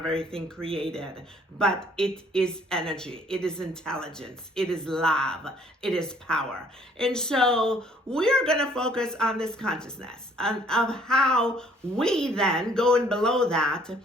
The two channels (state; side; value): normal; both; correlation 0.59